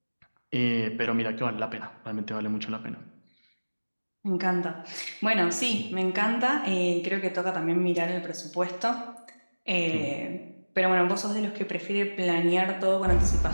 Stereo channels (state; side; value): inverted; both; correlation -1.00